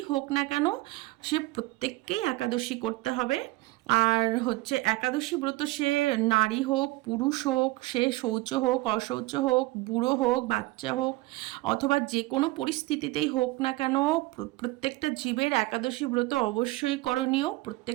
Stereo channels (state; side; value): quieter; left; 20.3 dB